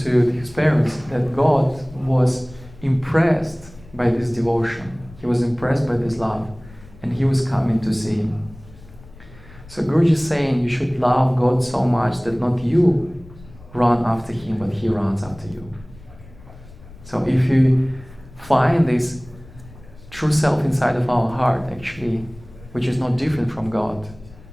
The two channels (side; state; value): left; noise; rumble, 21 dB below the sound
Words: to his parents that God was impressed by this devotion. He was impressed by this love, and he was coming to see him. So Guruji is saying you should love God so much that not you run after him, but he runs after you. So if you find this true self inside of our heart, actually, which is not different from God,